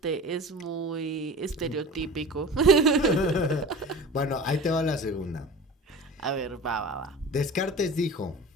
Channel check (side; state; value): both; normal; correlation 0.36